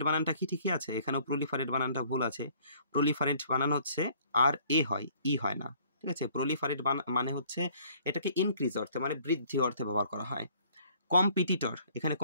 বানানটা কি ঠিকই আছে, এখানেও প্রলিফারেট বানানটা ভুল আছে। প্রলিফারেট বানান হচ্ছে RA হয়, ই হয় না, ঠিক আছে। প্রলিফারেট মানে হচ্ছে এটাকে ইনক্রিজ অর্থে, মানে বৃদ্ধি অর্থে ব্যবহার করা হয়। কম্পিটিটর, এখানে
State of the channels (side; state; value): both; inverted; correlation -0.59